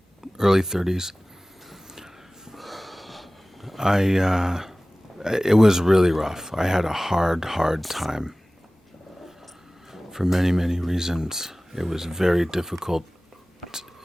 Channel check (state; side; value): normal; both; correlation 0.98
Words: early 30s. I it was really rough. I had a hard time for many reasons. It was very difficult.